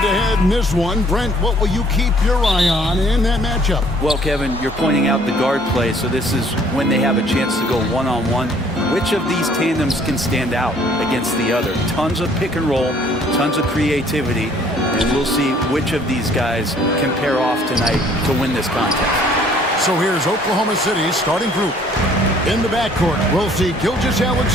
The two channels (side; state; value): both; normal; correlation 0.59